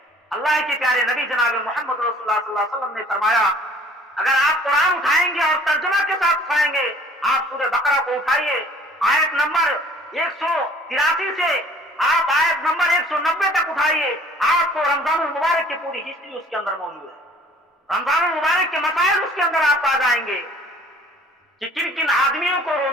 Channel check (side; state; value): both; normal; correlation 0.53